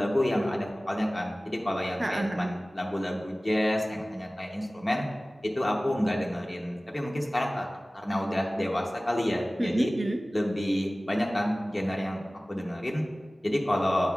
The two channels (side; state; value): both; normal; correlation 0.98